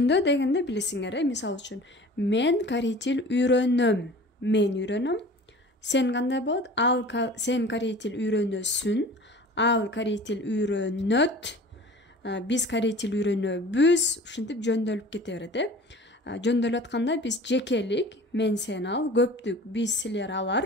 дегенде билесиңер мисал үчүн мен корей тил үйрөнөм. Мен үйрөнөм. Сен кандай болот? Сен корей тил үйрөнөсүн. Ал корей тил үйрөнөт. Биз корей тил үйрөнөбүз. Ушинтип жөндөлүп кете берет э. Жөндөлүп атканда биз жекелик, мен сен ал, көптүк, биз силер алар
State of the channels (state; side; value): normal; both; correlation 0.42